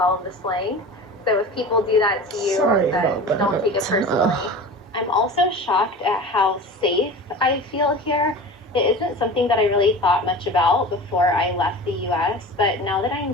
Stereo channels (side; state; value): both; normal; correlation 0.35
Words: of the slang. So if people do that to you, then don't take it personally. I'm also shocked at how safe I feel here. It isn't something that I really thought much about before I left the US, but now that